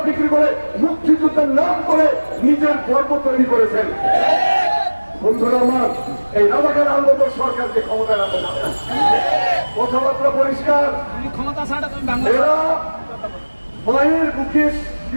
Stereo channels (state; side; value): inverted; both; correlation -1.00